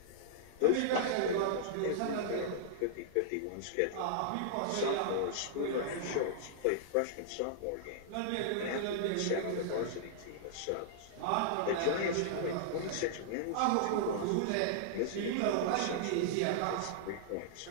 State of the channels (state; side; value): different; both; correlation -0.02